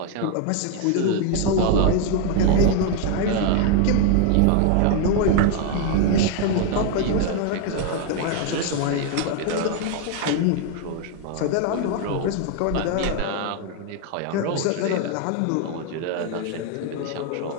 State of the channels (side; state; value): both; different; correlation 0.01